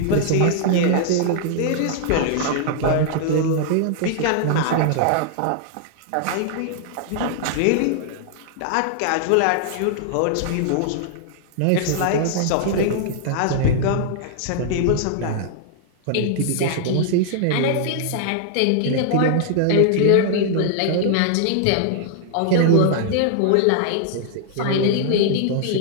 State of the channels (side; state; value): both; different; correlation -0.01